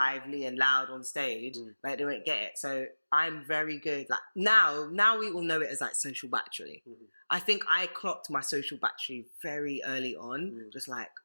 and loud on stage, like they won't get it. So I'm very good. Like now we all know it as like social battery. I think I clocked my social battery very early on. Just like,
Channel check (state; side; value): inverted; both; correlation -1.00